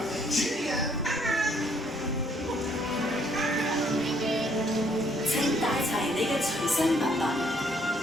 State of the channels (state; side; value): normal; both; correlation 0.66